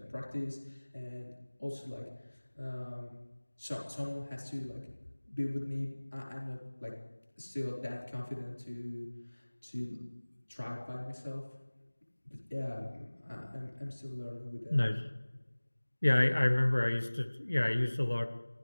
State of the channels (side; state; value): both; inverted; correlation -1.00